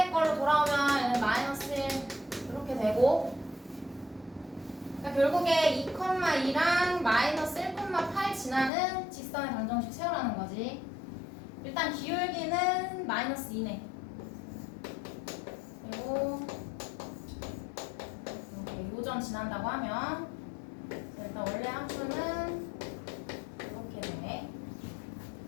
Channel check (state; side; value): drops out; right; at 8.7 s